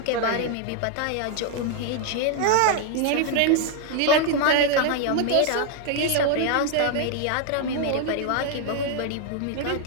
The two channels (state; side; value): different; both; correlation 0.00